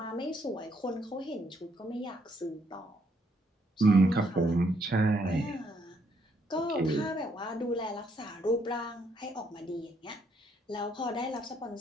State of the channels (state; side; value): normal; both; correlation 0.71